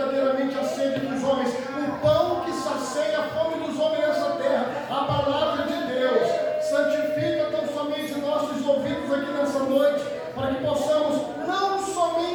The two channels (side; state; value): both; identical; correlation 1.00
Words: a sede dos homens, o pão que sacia a fome dos homens nessa terra, a palavra de Deus. Santifica tão somente nossos ouvidos aqui nessa noite, para que possamos não